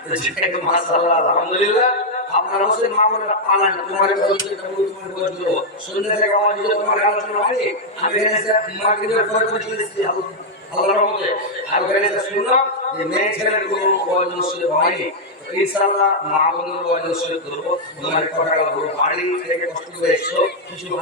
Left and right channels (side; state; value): both; normal; correlation -0.03